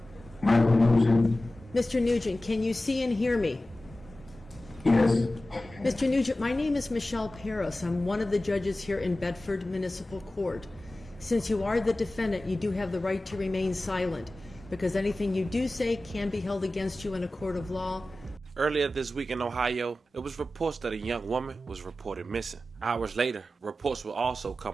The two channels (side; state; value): both; normal; correlation 0.95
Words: Michael Nugent. Mr. Nugent, can you see and hear me? Yes. Mr. Nugent, my name is Michelle Paris. I'm one of the judges here in Bedford Municipal Court. Since you are the defendant, you do have the right to remain silent, because anything you do say can be held against you in a court of law. Earlier this week in Ohio, it was reports that a young woman was reported missing. Hours later, reports will also